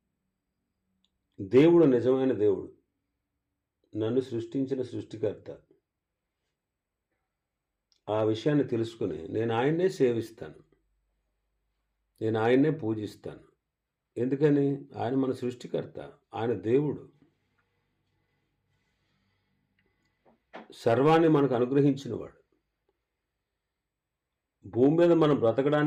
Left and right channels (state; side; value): identical; both; correlation 1.00